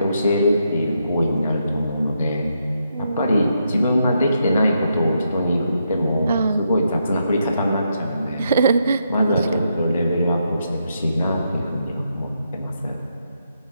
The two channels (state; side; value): inverted; both; correlation -0.80